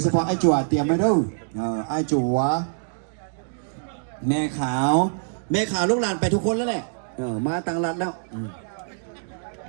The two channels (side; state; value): left; silent; digital silence